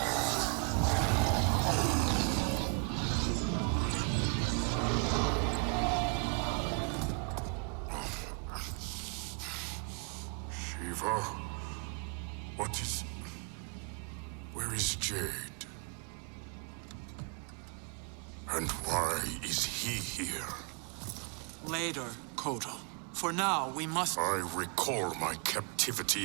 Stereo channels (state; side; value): quieter; left; 37.1 dB